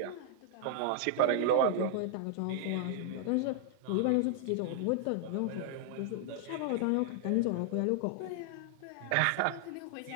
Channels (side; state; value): both; different; correlation -0.01